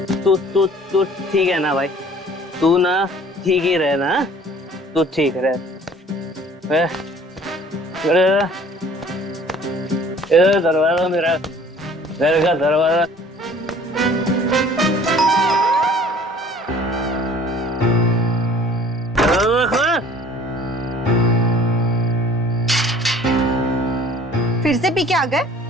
तू ठीक है ना भाई? तू ना ठीक ही रहे ना? तू ठीक रहे। इधर दरवाजा, मेरा घर का दरवाजा। फिर से पी के आ गए?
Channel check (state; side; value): normal; both; correlation 0.51